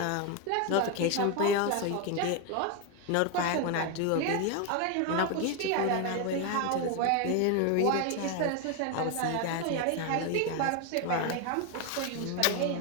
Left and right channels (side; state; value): both; different; correlation 0.02